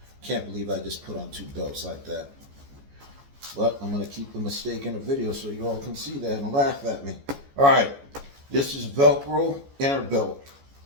Can't believe I just put on two belts like that. But I'm going to keep the mistake in the video so you all can see that and laugh at me. All right. This is Velcro inner belt.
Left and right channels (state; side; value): late; left; 14 ms